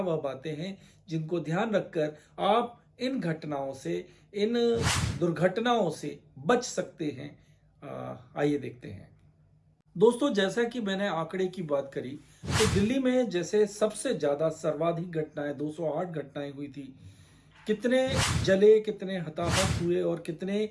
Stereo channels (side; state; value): both; identical; correlation 1.00